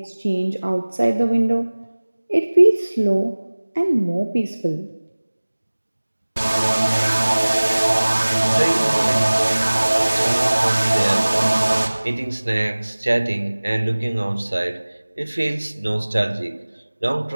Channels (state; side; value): inverted; both; correlation -1.00